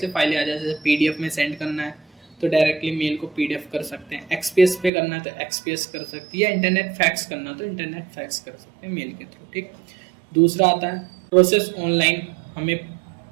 फाइलें आ जाए, जैसे पीडीएफ में सेंड करना है तो डायरेक्टली मेल को पीडीएफ कर सकते हैं, एक्सपीएस पे करना है तो एक्सपीएस कर सकते हैं, या इंटरनेट फैक्स करना है तो इंटरनेट फैक्स कर सकते हैं मेल के थ्रू, ठीक। दूसरा आता है प्रोसेस ऑनलाइन, हमें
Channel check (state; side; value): drops out; left; at 4.9 s